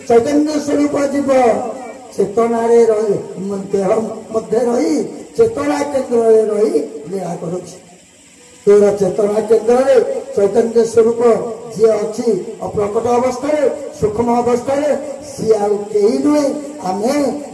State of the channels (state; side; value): identical; both; correlation 1.00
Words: ଚୈତନ୍ୟ ସ୍ୱରୂପ ଯିବ ଚେତନାରେ ରହି ଦେହ ମଧ୍ୟ ରହି ଚେତନା କେନ୍ଦ୍ରରେ ରହି ଲୀଳା କରୁଛି ତୋର ଚେତନା କେନ୍ଦ୍ରରେ चैतन्य स्वरूप जी अच्छी अप्रकट अवस्था सूक्ष्म अवस्था सी आई नुहे